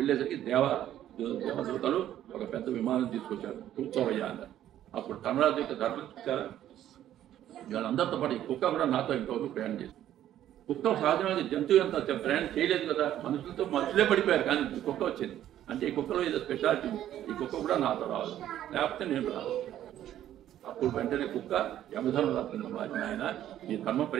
దేవదూతలు ఒక పెద్ద విమానం తీసుకొచ్చారు, కూర్చోవయ్యా అన్నారు. అప్పుడు ధర్మరాజు యొక్క ధర్మం చూసారా, వీళ్ళందరితో పాటు ఈ కుక్క కూడా నాతో ఇంకొక ప్రయాణం చేసింది. కుక్క సహజమైన జంతువు ఎంత ప్రయాణం చేయలేదు కదా, మనుషులే పడిపోయారు, కానీ కుక్క వచ్చింది అంటే ఈ కుక్కలో ఏదో స్పెషాలిటీ, ఈ కుక్క కూడా నాతో రావాలి, లేకపోతే నేను రాదు. అప్పుడు వెంటనే కుక్క యమధర్మ రాత్రి మారిన ఆయన, ఈ ధర్మ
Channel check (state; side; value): quieter; left; 11.9 dB